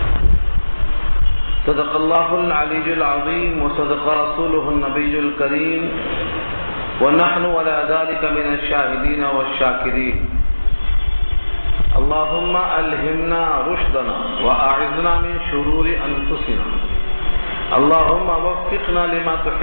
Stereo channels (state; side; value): inverted; both; correlation -1.00